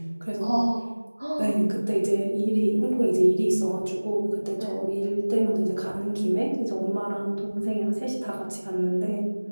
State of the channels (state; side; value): inverted; both; correlation -1.00